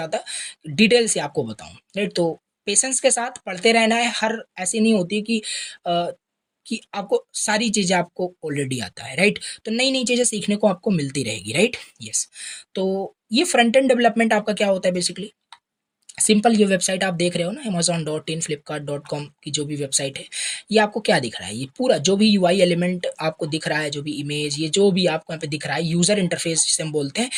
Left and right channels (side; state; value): both; identical; correlation 1.00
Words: डिटेल से आपको बताऊँ, राइट। तो पेशेंस के साथ पढ़ते रहना है। हर ऐसी नहीं होती कि आपको सारी चीज़ें आपको ऑलरेडी आता है, राइट। तो नई नई चीज़ें सीखने को आपको मिलती रहेगी, राइट। यस। तो ये फ्रंट एंड डेवलपमेंट आपका क्या होता है बेसिकली, सिंपल ये वेबसाइट आप देख रहे हो ना amazon.in flipkart.com की जो भी वेबसाइट है, ये आपको क्या दिख रहा है, ये पूरा जो भी यूआई एलिमेंट आपको दिख रहा है, जो भी इमेज, ये जो भी आपको यहाँ पे दिख रहा है, यूजर इंटरफेस जिसे हम बोलते हैं,